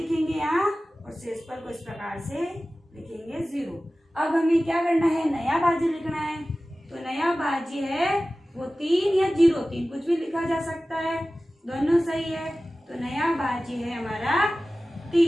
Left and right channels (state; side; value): normal; both; correlation 0.96